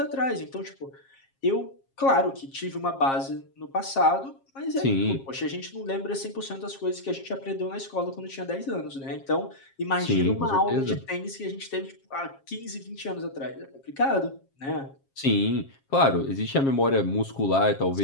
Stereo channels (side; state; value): right; late; 7.4 ms